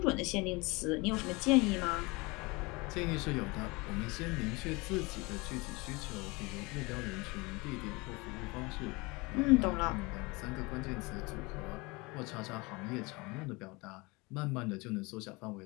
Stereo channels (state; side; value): quieter; right; 25.4 dB